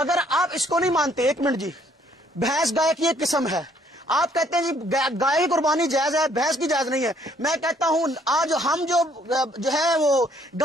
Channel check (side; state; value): both; normal; correlation 0.65